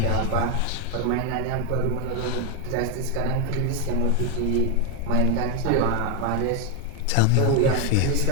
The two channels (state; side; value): different; both; correlation 0.01